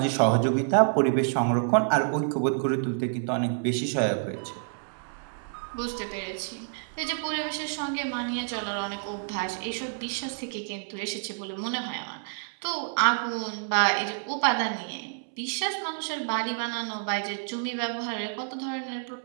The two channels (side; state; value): left; silent; 59 dB below the other